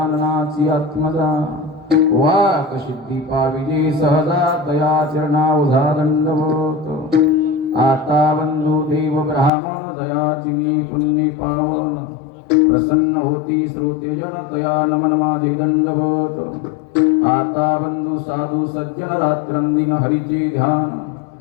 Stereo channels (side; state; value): right; drops out; at 9.5 s